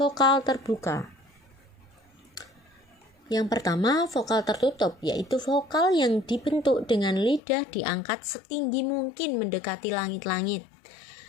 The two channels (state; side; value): drops out; right; at 7.4 s